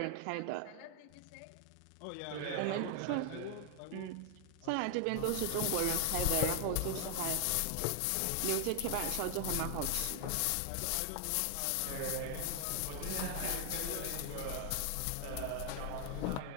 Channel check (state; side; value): different; both; correlation 0.00